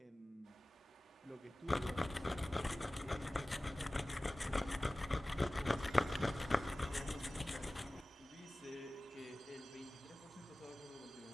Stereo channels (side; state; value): both; normal; correlation 0.97